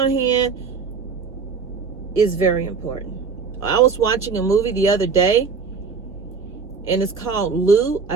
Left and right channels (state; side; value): quieter; left; 5.2 dB